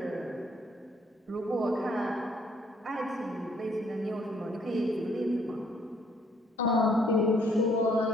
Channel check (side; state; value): both; normal; correlation 0.66